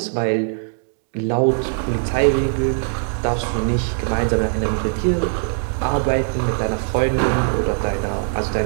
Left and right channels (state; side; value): silent; left; digital silence